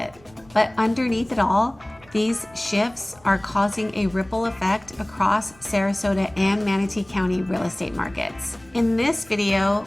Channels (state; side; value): noise; right; rumble, 27 dB below the sound